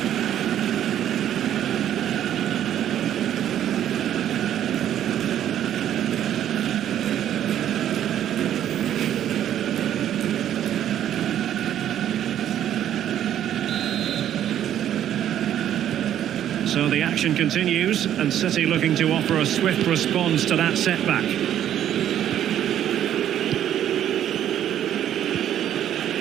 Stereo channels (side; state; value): left; quieter; 10.8 dB